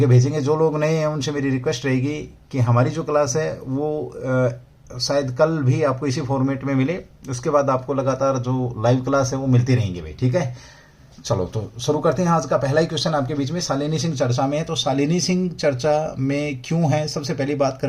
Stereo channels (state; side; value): identical; both; correlation 1.00